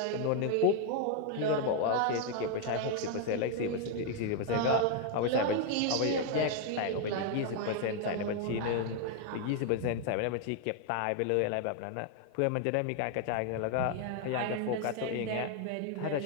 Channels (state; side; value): different; both; correlation 0.00